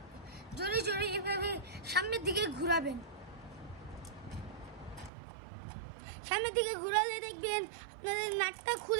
জোরে জোরে এভাবে সামনের দিকে ঘোরাবেন। সামনের দিকে ঘোরালে দেখবেন আপনাদের নাটটা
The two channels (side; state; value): left; drops out; at 5.1 s